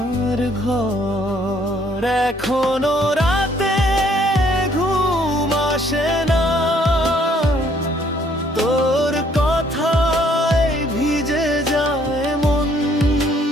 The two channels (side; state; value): both; normal; correlation 0.64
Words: ঘর। এখনো রাতে ঘুম আসে না, তোর কথায় ভিজে যায় মন।